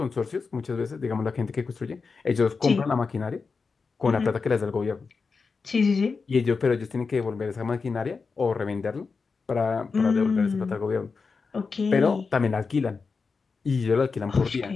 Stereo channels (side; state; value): right; quieter; 4.8 dB